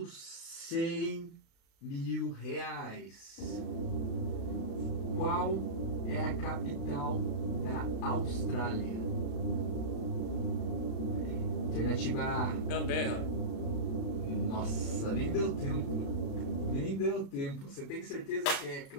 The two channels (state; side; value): late; right; 36 ms